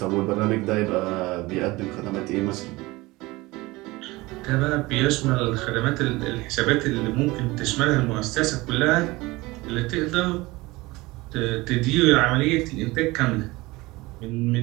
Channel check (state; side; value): quieter; left; 21.3 dB